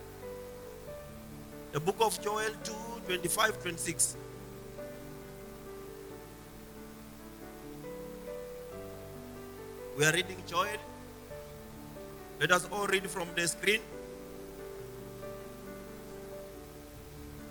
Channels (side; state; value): both; identical; correlation 1.00